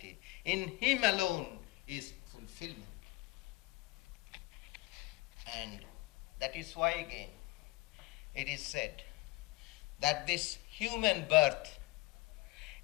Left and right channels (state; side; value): quieter; right; 20.5 dB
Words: In Him alone is fulfillment. And that is why again it is said that this human birth